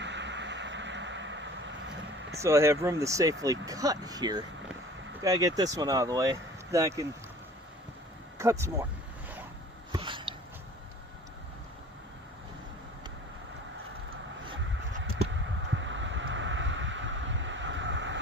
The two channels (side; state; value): both; normal; correlation 0.45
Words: So I have room to safely cut here. Gotta get this one out of the way, then I can cut some more.